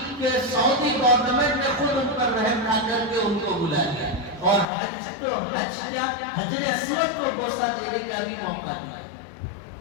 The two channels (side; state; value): right; drops out; at 4.7 s